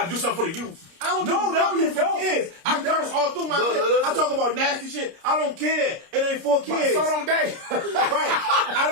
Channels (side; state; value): left; late; 30 ms